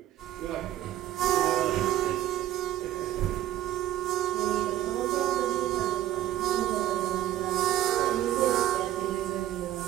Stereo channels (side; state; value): left; quieter; 13.1 dB